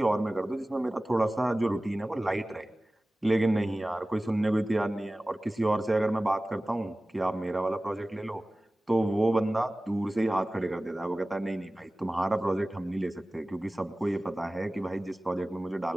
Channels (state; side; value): normal; both; correlation 0.97